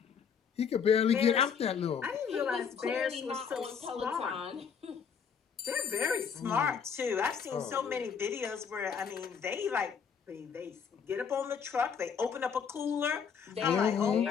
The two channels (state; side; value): quieter; right; 6.7 dB